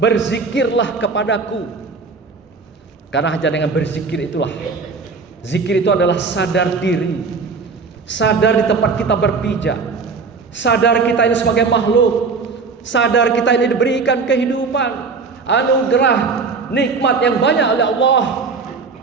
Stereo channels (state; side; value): quieter; left; 4.7 dB